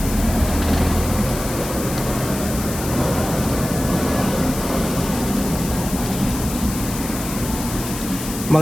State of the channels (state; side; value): noise; left; hiss, 9 dB below the sound